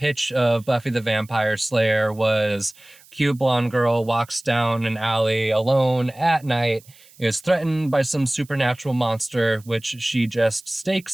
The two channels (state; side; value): noise; right; hiss, 26 dB below the sound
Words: of Buffy the Vampire Slayer was cute blonde girl walks down an alley alone at night, is threatened by some supernatural monster, which she just